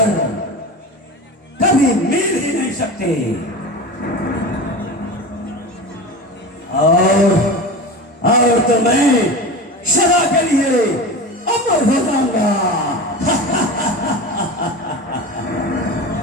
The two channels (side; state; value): both; normal; correlation 0.29